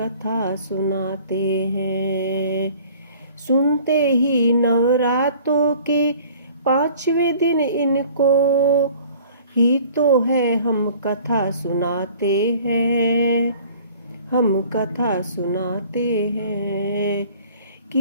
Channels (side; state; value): both; inverted; correlation -0.50